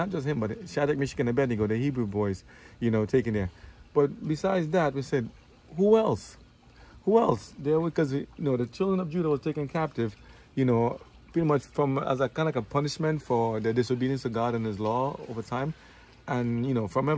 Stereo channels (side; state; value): both; identical; correlation 1.00